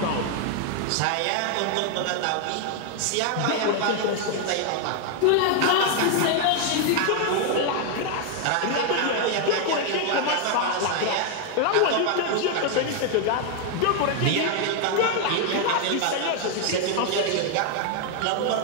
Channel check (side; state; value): both; different; correlation 0.00